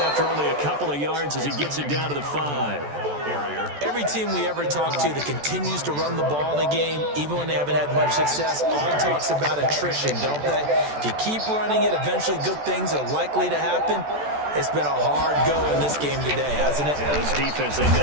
only a couple of yards as he gets it down to the 5. Every team we ever talk to that continues to run the ball in a game, even when they haven't had much success, all talks about attrition, don't they? If you keep running it, eventually good things are likely to happen. It's been a hard go in this game today, hasn't it? Yeah, this defense, they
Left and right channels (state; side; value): late; left; 14 ms